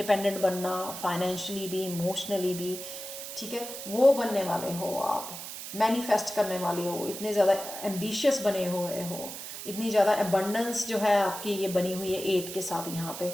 बनना, फाइनेंशियली भी, इमोशनली भी। ठीक है, वो बनने वाले हो आप, मैनिफेस्ट करने वाले हो, इतने ज़्यादा एम्बिशियस बने हुए हो, इतनी ज़्यादा एबंडेंस जो है आपकी ये बनी हुई है 8 के साथ यहाँ पे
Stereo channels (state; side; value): noise; right; hiss, 9 dB below the sound